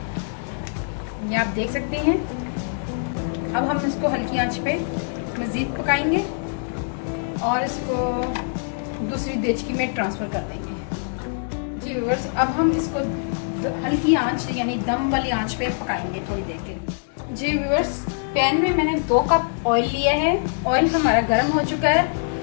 ये आप देख सकते हैं। अब हम इसको हल्की आंच पे मजीद पकाएंगे और इसको दूसरी देचकी में ट्रांसफर कर देंगे। जी व्यूअर्स, अब हम इसको हल्की आंच यानी दम वाली आंच पे पकाएंगे थोड़ी देर के लिए। जी व्यूअर्स, पैन में मैंने 2 कप ऑयल लिया है। ऑयल हमारा गर्म हो चुका है।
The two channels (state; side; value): silent; right; digital silence